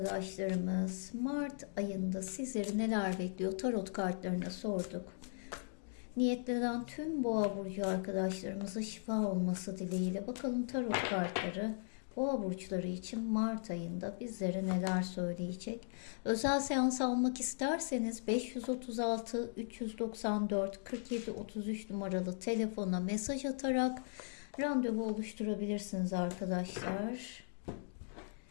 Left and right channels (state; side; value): silent; right; digital silence